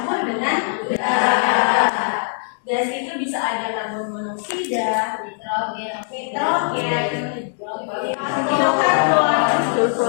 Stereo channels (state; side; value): silent; right; 62 dB below the other